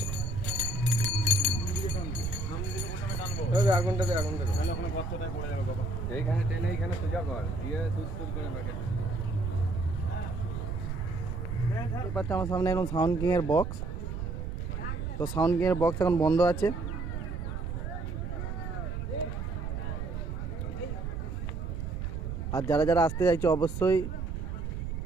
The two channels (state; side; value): noise; right; rumble, 4 dB below the sound